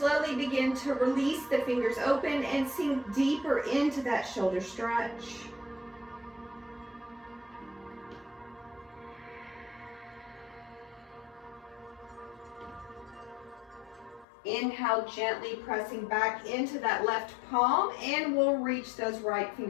begin to release the fingers open and sink deeper into that shoulder stretch. Inhale, gently pressing back into that left palm, and we'll reach those right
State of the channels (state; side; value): drops out; right; at 14.2 s